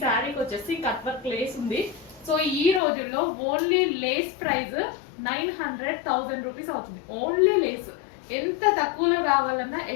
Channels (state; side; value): drops out; right; at 2.8 s